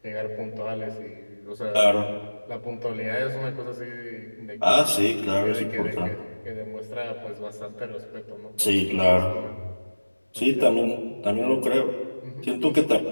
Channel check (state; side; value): inverted; both; correlation -1.00